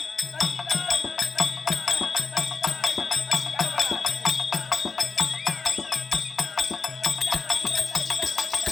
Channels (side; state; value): right; quieter; 4.6 dB